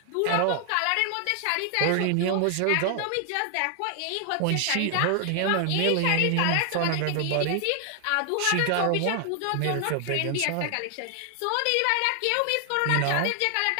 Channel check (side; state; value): both; different; correlation 0.00